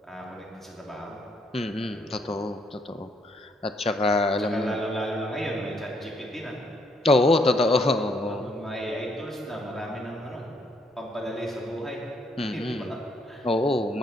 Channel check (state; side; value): normal; both; correlation 0.71